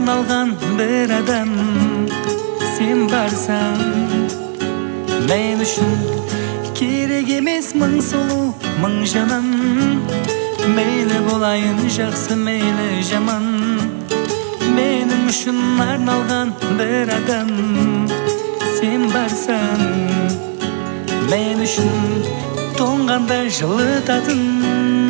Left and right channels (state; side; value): silent; left; 69 dB below the other